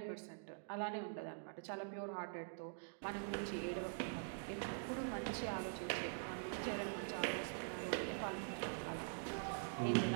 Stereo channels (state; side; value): silent; left; digital silence